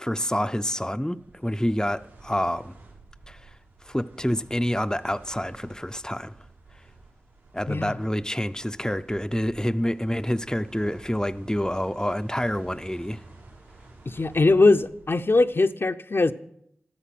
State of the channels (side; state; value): both; normal; correlation 0.93